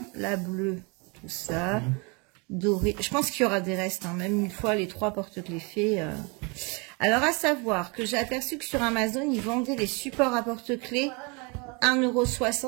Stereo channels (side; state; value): left; quieter; 30.7 dB